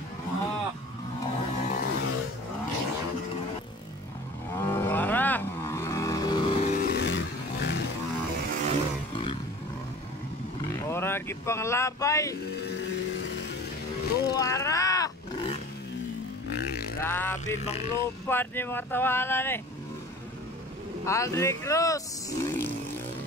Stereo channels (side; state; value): both; normal; correlation 0.42